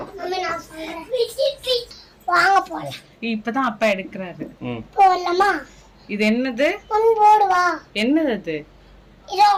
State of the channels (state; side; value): identical; both; correlation 1.00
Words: வாங்க போலாம். இப்பதான் அப்பா எடுக்கிறாரு. போலாமா? இது என்னது? போடுவா. என்னது அது? இது